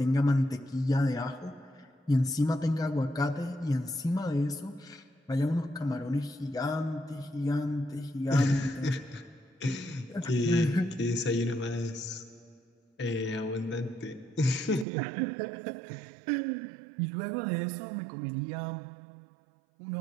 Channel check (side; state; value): left; drops out; at 14.9 s